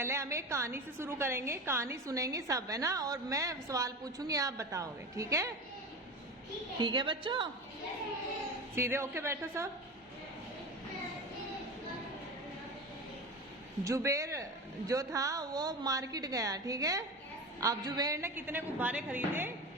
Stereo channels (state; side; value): normal; both; correlation 0.27